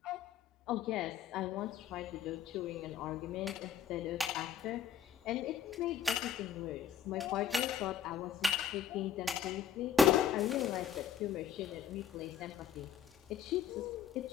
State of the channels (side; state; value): right; quieter; 8.0 dB